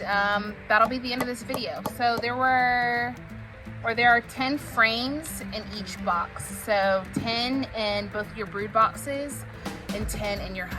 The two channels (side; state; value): both; identical; correlation 1.00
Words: that'll be the end of this video. So there are 10 frames in each box. So 10 in both your brood boxes and 10 in your